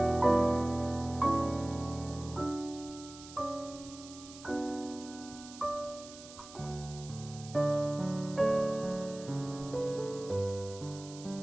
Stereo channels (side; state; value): right; noise; hiss, 16 dB below the sound